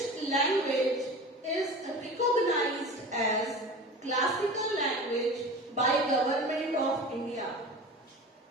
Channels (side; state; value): both; normal; correlation 0.35